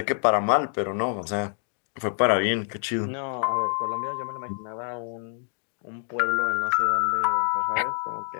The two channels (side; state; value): right; silent; 57 dB below the other